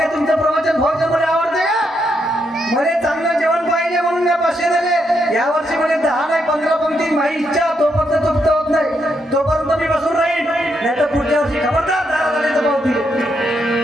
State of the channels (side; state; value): both; normal; correlation 0.79